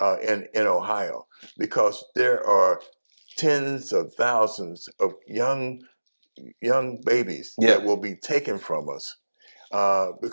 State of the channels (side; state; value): both; inverted; correlation -1.00